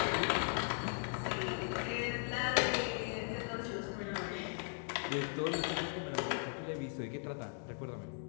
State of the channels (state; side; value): silent; right; 52 dB below the other